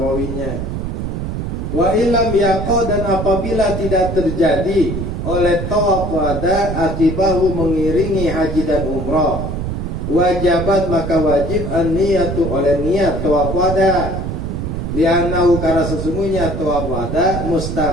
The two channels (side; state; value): right; noise; rumble, 4 dB below the sound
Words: Wa ilam yaqo, dan apabila tidak terjadi oleh tawaf wada akibahu mengiringi haji dan umrah, wajabat, maka wajib an-niyatu, oleh niat tawaf wada. Li'annahu, karena sesungguhnya tawaf wada